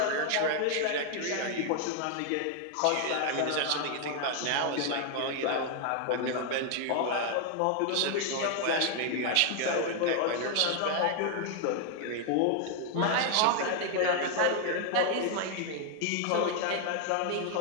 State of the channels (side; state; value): both; different; correlation 0.00